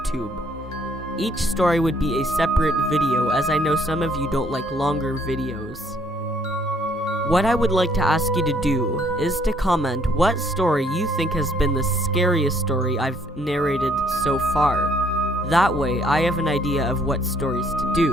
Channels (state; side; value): normal; both; correlation 0.65